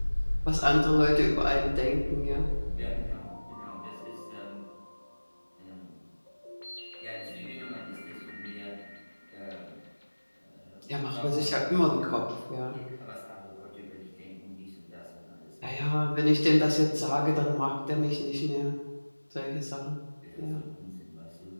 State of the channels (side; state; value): both; inverted; correlation -1.00